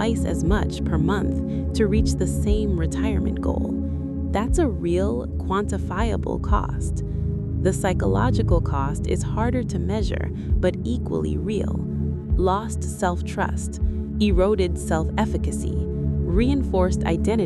as much per month to reach the same retirement goal. That's a real, quantifiable cost. The psychological cost is harder to measure, but equally real. Lost self-trust, eroded self-efficacy, reinforced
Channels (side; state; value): both; identical; correlation 1.00